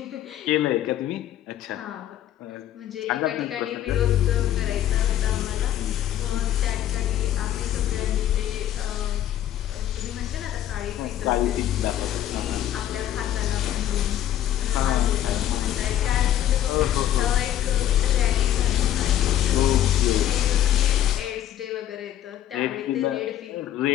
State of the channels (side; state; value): right; quieter; 11.8 dB